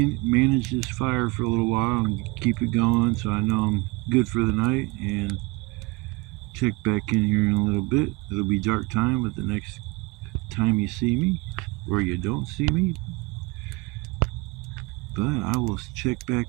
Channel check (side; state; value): left; quieter; 25.1 dB